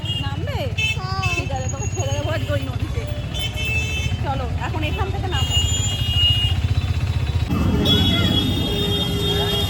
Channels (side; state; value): both; identical; correlation 1.00